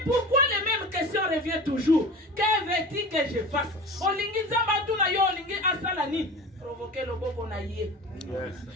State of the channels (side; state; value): both; normal; correlation 0.35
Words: pourquoi les mêmes questions reviennent toujours? Que veux-tu que je fasse? Olingi nzamba tu na yo olingi asala ni provoquer le boko na yé.